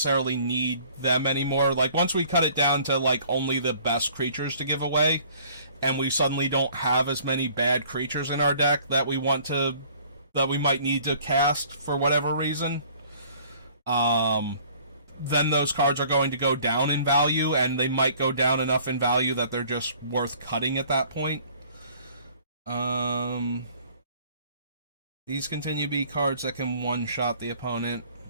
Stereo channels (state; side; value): inverted; both; correlation -0.54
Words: need them anymore. Like, once we cut it down to, like, only the best creatures to give away, and we suddenly don't have as many bad creatures in our deck that we might need to cast for whatever reason, then those cards are going to go down in value, and they might go down enough in value that they're just worth cutting at that point. These continue to be cards that can one-shot the opponent.